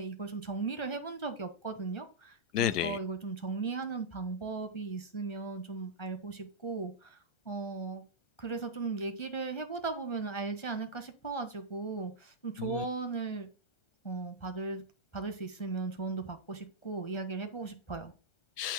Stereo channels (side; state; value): right; late; 1.3 ms